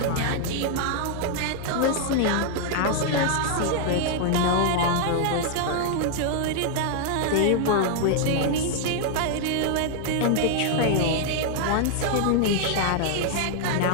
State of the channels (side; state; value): both; different; correlation 0.00